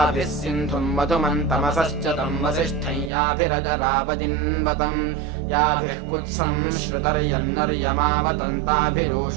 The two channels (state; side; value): drops out; left; at 3.1 s